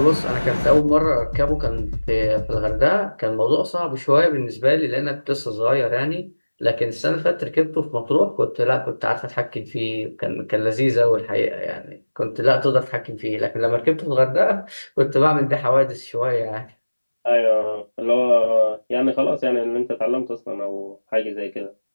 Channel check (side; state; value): both; inverted; correlation -1.00